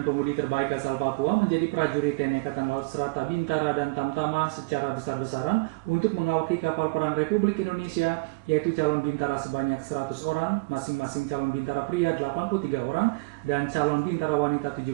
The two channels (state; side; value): quieter; left; 25.8 dB